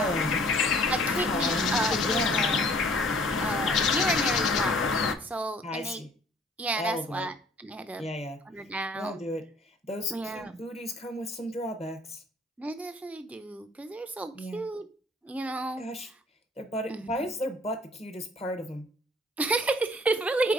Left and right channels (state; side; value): normal; both; correlation 0.55